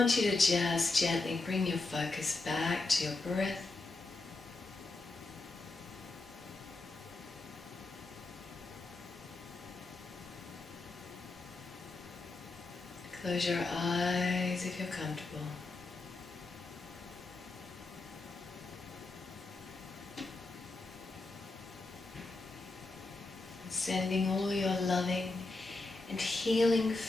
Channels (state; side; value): quieter; right; 3.3 dB